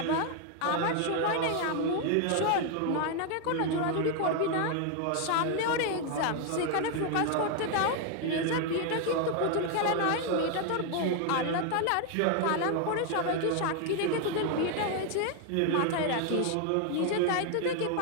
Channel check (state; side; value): different; both; correlation 0.01